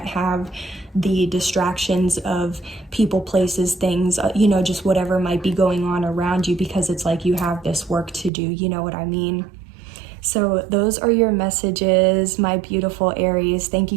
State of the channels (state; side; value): drops out; left; at 8.3 s